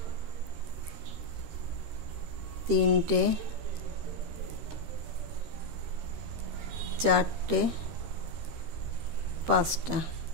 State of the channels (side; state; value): left; late; 13 ms